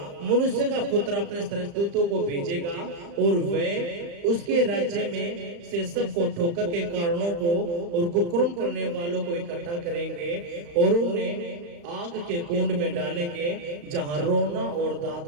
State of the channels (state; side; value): late; left; 35 ms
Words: मनुष्य का पुत्र अपने स्वर्गदूतों को भेजेगा और वे उसके राज्य में से सबको ठोकर के कारणों को और कुकर्म करने वालों को इकट्ठा करेंगे और उन्हें आग के कुंड में डालेंगे, जहां रोना और